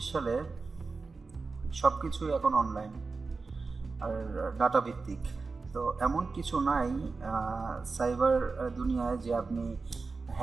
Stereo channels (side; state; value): left; quieter; 4.2 dB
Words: সালে সব কিছুই এখন অনলাইন আর ডাটা ভিত্তিক। তো এমন কিছু নাই সাইবার দুনিয়ায় যে আপনি